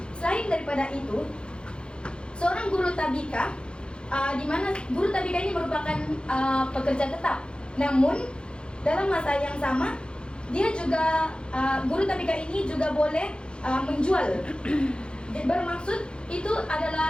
Selain daripada itu, seorang guru tabika, di mana guru tabika ini merupakan pekerja tetap, namun dalam masa yang sama dia juga guru tabika ini juga boleh menjual. Bermaksud itu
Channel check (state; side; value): late; right; 0.053 ms